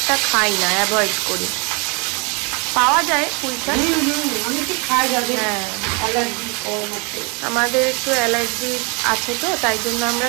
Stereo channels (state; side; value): quieter; left; 32.1 dB